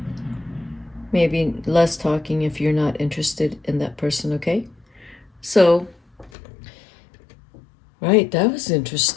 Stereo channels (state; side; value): drops out; right; at 6.3 s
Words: Maybe less talking if you're not interested in that person, okay? So, right, that was